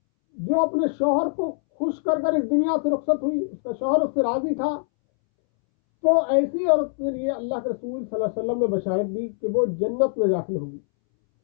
جو اپنے شوہر کو خوش کر کر اس دنیا سے رخصت ہوئی، اس کا شوہر اس سے راضی تھا، تو ایسی عورت کے لیے اللہ کے رسول صلی اللہ علیہ وسلم نے بشارت دی کہ وہ جنت میں داخل ہوگی۔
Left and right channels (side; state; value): right; silent; 63 dB below the other